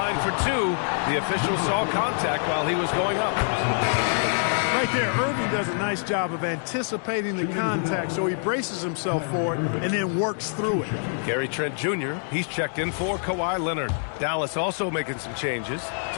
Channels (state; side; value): silent; right; 61 dB below the other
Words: for 2. The official saw contact while he was going up. Right there, Irving does a nice job of anticipating the contact, so he braces himself for it and then works through it. Gary Trent Jr., he's checked in for Kawhi Leonard. Dallas also making some changes.